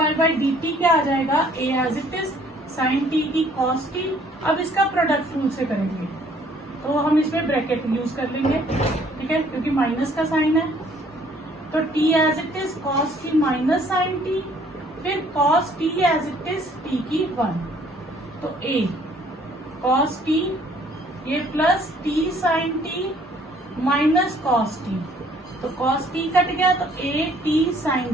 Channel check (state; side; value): normal; both; correlation 0.60